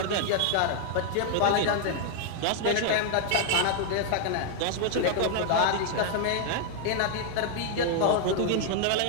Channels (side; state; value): both; different; correlation 0.00